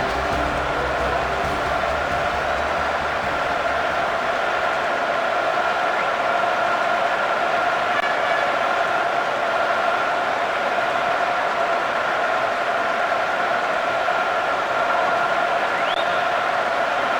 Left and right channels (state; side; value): identical; both; correlation 1.00